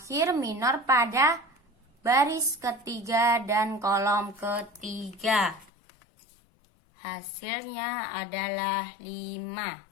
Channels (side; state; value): right; drops out; at 5.7 s